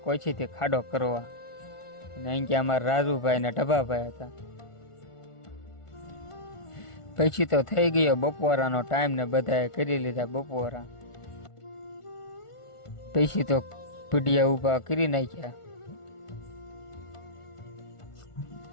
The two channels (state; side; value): late; right; 1.4 ms